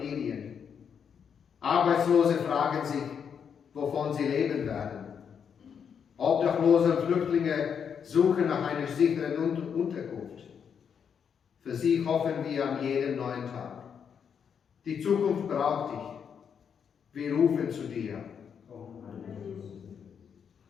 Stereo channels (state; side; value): quieter; right; 7.3 dB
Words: Arbeitslose fragen sich, wovon sie leben werden. Obdachlose und Flüchtlinge suchen nach einer sicheren Unterkunft. Für sie hoffen wir an jedem neuen Tag. Die Zukunft braucht dich. Wir rufen zu dir.